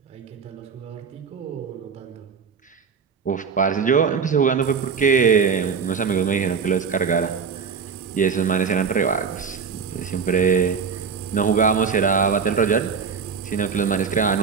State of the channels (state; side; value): quieter; left; 6.1 dB